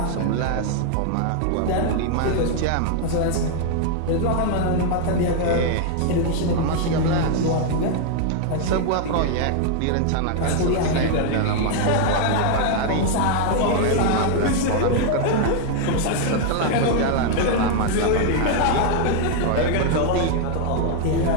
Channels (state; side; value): different; both; correlation 0.00